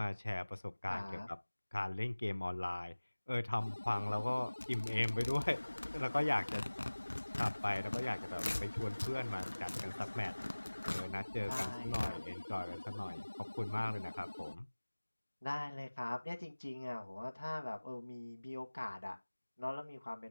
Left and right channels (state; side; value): inverted; both; correlation -1.00